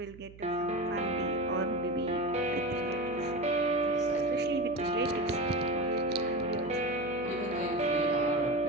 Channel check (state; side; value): noise; right; hum, 19 dB below the sound